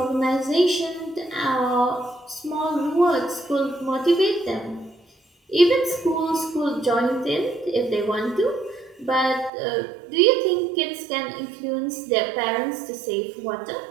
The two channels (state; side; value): drops out; left; at 9.5 s